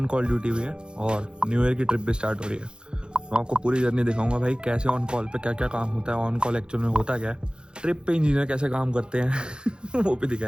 कॉल ड्यूटी भी है और न्यू ईयर की ट्रिप भी स्टार्ट हो रही है। मैं आपको पूरी जर्नी दिखाऊंगा भाई, कैसे ऑन कॉल पे क्या क्या काम होता है, ऑन कॉल एक्चुअल में होता क्या है, ट्रिप पे इंजीनियर कैसे काम करते हैं वो भी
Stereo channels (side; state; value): left; late; 0.049 ms